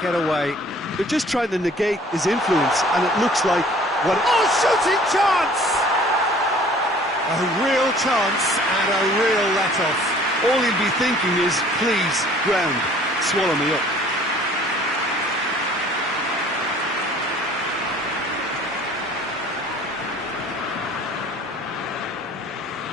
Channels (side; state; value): both; normal; correlation 0.52